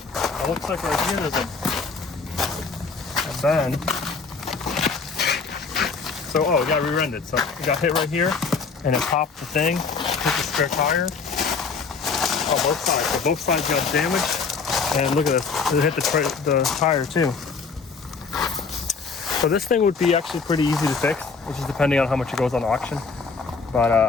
It looks like right here there's a bend. So, oh, it got rear-ended. So it got hit right here, and it popped the thing, hit the spare tire. Oh, both sides. So both sides got damaged. And look at this. It hit the tire too. So this thing would be actually pretty easy to fix, which is depending on how much it goes on auction. But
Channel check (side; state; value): right; quieter; 4.9 dB